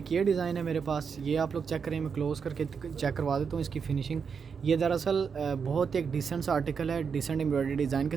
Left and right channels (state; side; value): quieter; left; 6.2 dB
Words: ये डिज़ाइन है मेरे पास, ये आप लोग चेक करें, मैं क्लोज़ करके चेक करवा देता हूँ इसकी फ़िनिशिंग। ये दरअसल बहुत एक डिसेंट सा आर्टिकल है, डिसेंट एम्ब्रॉयडरी डिज़ाइन के